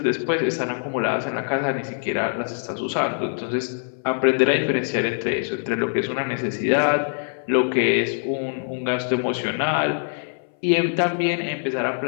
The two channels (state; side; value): silent; right; 61 dB below the other